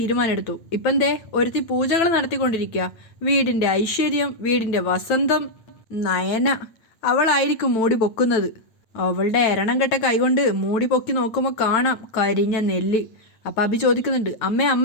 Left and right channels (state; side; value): late; right; 9.1 ms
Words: എടുത്തു. ഇപ്പം ദേ ഒരുത്തി പൂജകൾ നടത്തിക്കൊണ്ടിരിക്കുക. വീടിൻ്റെ ഐശ്വര്യം, വീടിൻ്റെ വസന്തം. നയന അവളായിരിക്കും മൂടി പൊക്കുന്നത്. അവളുടെ എരണം കെട്ട കൈകൊണ്ട് മൂടി പൊക്കി നോക്കുമ്പോൾ കാണാം കരിഞ്ഞ നെല്ല്. അപ്പം അഭി ചോദിക്കുന്നുണ്ട്,